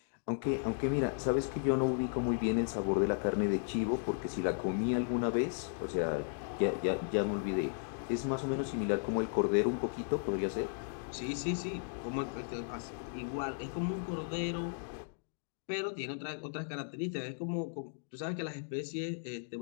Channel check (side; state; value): right; silent; digital silence